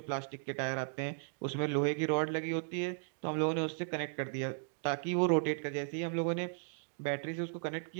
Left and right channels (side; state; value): left; silent; digital silence